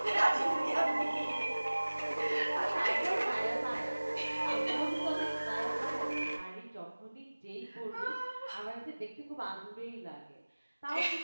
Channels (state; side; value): inverted; both; correlation -1.00